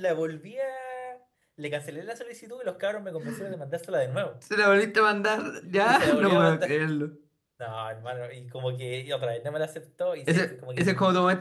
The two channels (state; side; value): identical; both; correlation 1.00